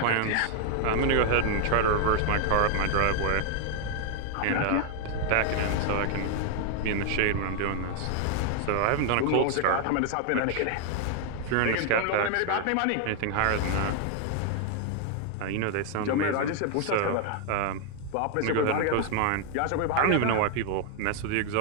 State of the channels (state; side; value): different; both; correlation 0.00